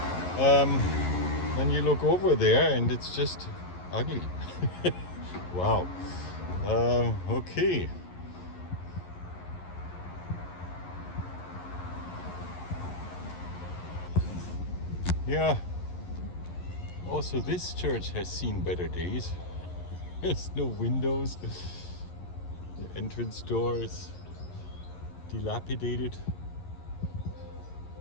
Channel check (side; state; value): right; late; 11 ms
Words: Then you look over there and it's just ugly. Wow. Okay. Yeah. Also, this church has seen better days. There's no windows. The entrance door is dilapidated.